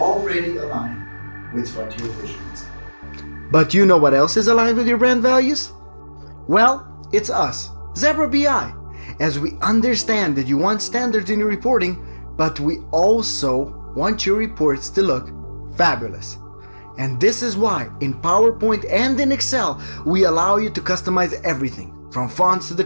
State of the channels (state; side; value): inverted; both; correlation -1.00